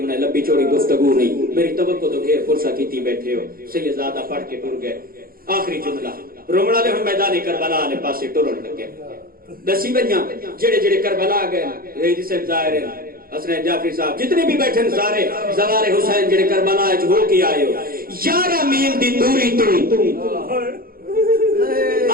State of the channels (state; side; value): late; left; 0.42 ms